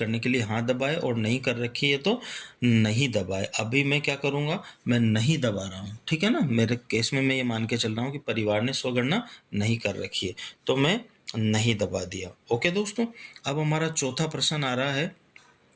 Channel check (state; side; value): identical; both; correlation 1.00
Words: के लिए हाँ दबाएं, और नहीं कर रखी है तो नहीं दबाएं। अभी मैं क्या करूँगा, मैं नहीं दबा रहा हूँ। ठीक है ना, मेरे केस में मैं ये मान के चल रहा हूँ कि परिवार ने स्वगणना नहीं कर रखी है, तो मैं नहीं दबा दिया। ओके दोस्तों, अब हमारा चौथा प्रश्न आ रहा है